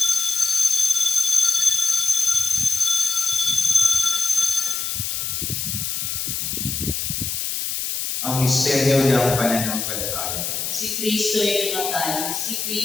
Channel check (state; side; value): noise; left; hiss, 2 dB below the sound